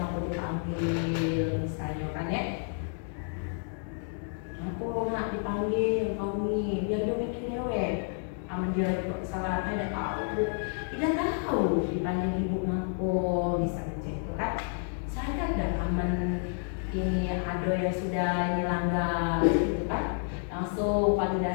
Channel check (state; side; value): silent; right; 58 dB below the other